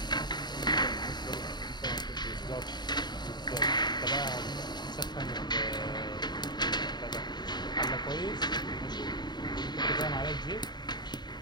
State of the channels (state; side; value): late; right; 0.21 ms